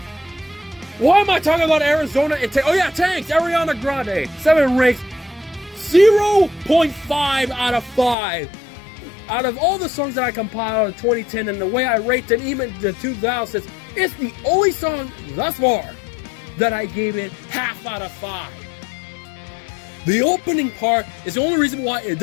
why am I talking about Arizona and tanks, Ariana Grande, 7 Rings, 0.5 out of 5. Out of all the songs that I compiled in 2010 and the way I rate them, even the 2000s, it's the only song thus far that I gave it half out of 5. The opening part is the only reason why it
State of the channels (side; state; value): right; drops out; at 8.2 s